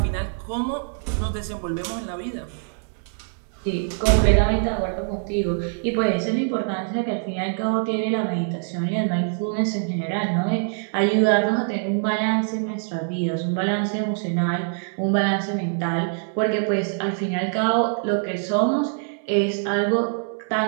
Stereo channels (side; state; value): left; silent; 63 dB below the other